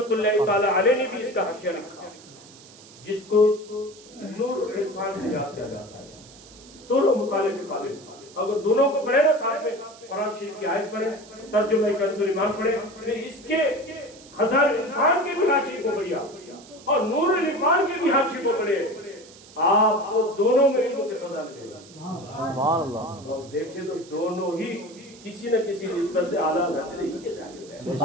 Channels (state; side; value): noise; right; hiss, 21 dB below the sound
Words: اللہ تعالی علیہ نے بھی اس کا حاشیہ لکھا جس کو نور العرفان سے یاد کیا جاتا ہے. دونوں مطالعے کے قابل. اگر دونوں کو پڑھے نا ساتھ میں، قرآن شریف کی آیت پڑھے، ترجمہ کنز الایمان پڑھے، پھر اس کے خزائن العرفان کے بھی حاشیے کو پڑھیا اور نور العرفان کے بھی حاشیے کو پڑھے، آپ کو دونوں میں علم کے خزانے ملے گا. سبحان اللہ. اور دیکھیں تو دونوں ہی کسی نہ کسی نسبت سے اعلیٰ حضرت ہی کے شاگرد ہیں.